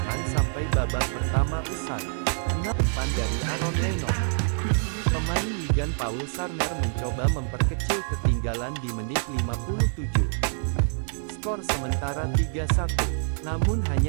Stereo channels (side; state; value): left; silent; 61 dB below the other